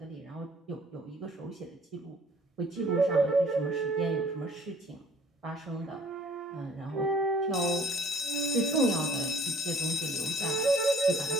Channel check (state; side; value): normal; both; correlation 0.56